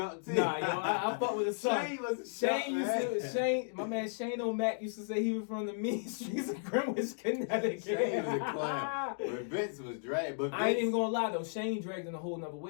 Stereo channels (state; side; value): silent; right; digital silence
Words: too. Nah, yo, I fuck with his son. Shane was a chump, Shane, my man Shane O'Mac used to say he was from the mean streets of Greenwich, Connecticut. Shane was a clown. But Vince was dragged. I ain't even gonna lie though, Shane dragged in a whole nother